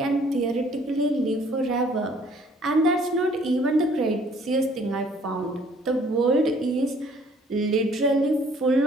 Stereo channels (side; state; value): both; normal; correlation 0.58